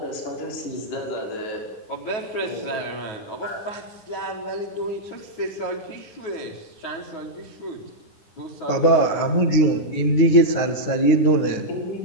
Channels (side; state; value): right; late; 9.6 ms